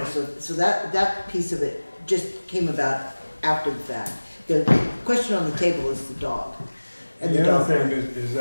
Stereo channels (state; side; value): inverted; both; correlation -1.00